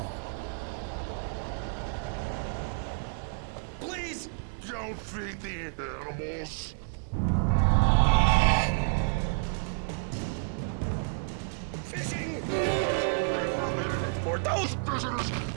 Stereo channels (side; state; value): left; silent; digital silence